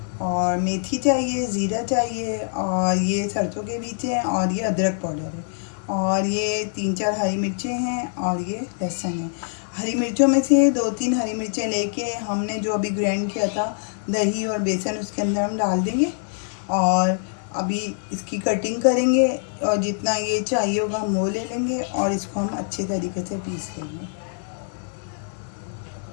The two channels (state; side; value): silent; right; 63 dB below the other